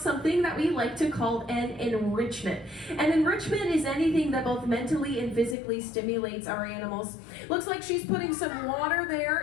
that we like to call an enrichment. An enrichment is anything that both mentally and physically stimulates our animals. Looks like she's putting some water there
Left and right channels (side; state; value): right; drops out; at 5.6 s